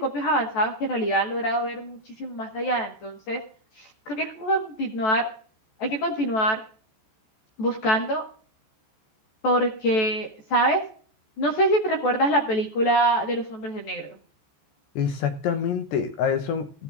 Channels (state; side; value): late; right; 14 ms